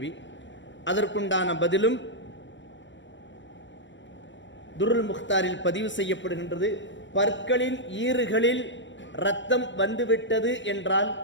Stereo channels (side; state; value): right; late; 0.54 ms